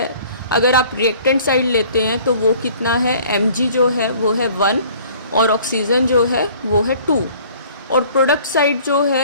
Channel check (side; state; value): both; inverted; correlation -0.52